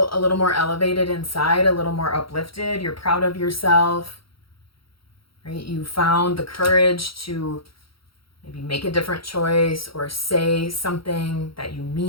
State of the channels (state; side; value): late; right; 0.75 ms